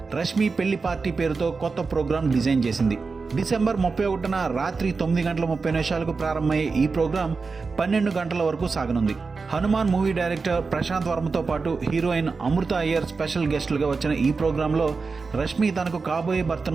రష్మి పెళ్లి పార్టీ పేరుతో కొత్త ప్రోగ్రాం డిజైన్ చేసింది. డిసెంబర్ 31న రాత్రి 9:30 ప్రారంభమయ్యే ఈ ప్రోగ్రాం 12 గంటల వరకు సాగనుంది. హనుమాన్ మూవీ డైరెక్టర్ ప్రశాంత్ వర్మతో పాటు హీరోయిన్ అమృత అయ్యర్ స్పెషల్ గెస్టులుగా వచ్చిన ఈ ప్రోగ్రాంలో రష్మి తనకు కాబోయే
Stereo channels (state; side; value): quieter; left; 4.5 dB